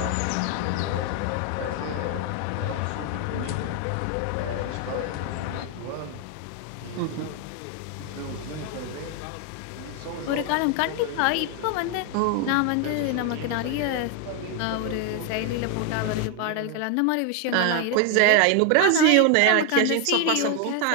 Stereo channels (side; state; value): both; different; correlation 0.01